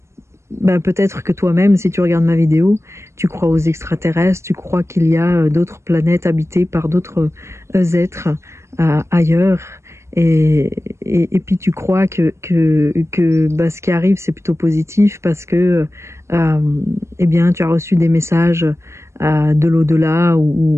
Peut-être que toi-même, si tu regardes ma vidéo, tu crois aux extraterrestres, tu crois qu'il y a d'autres planètes habitées par d'autres êtres ailleurs. Et puis tu crois que ce qui arrive c'est plutôt positif parce que eh bien tu as reçu des messages de l'au-delà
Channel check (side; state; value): left; late; 0.13 ms